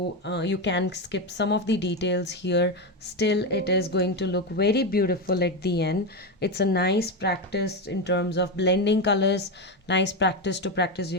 can skip some of the details here. Still, it is going to look very beautiful at the end. It's a nice practice in terms of blending colors, nice practice to practice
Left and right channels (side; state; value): both; normal; correlation 0.12